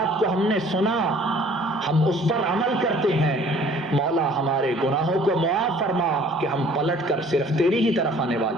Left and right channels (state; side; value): normal; both; correlation 0.54